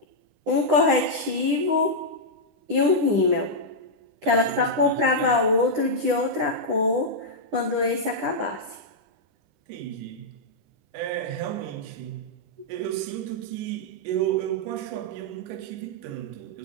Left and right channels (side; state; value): left; late; 9.9 ms